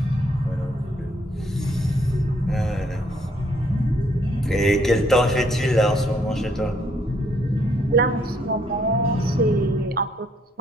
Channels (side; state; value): both; normal; correlation 0.68